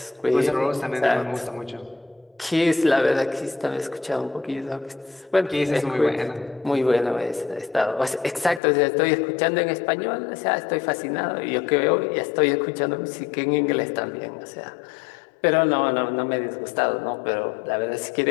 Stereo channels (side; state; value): right; drops out; at 8.6 s